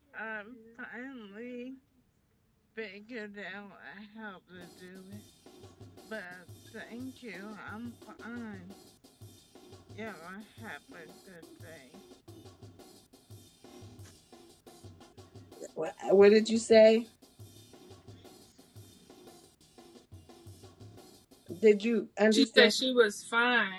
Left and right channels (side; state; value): both; identical; correlation 1.00